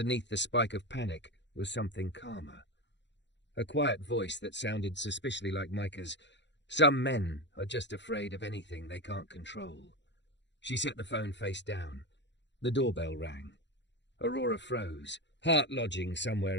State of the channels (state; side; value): late; right; 0.52 ms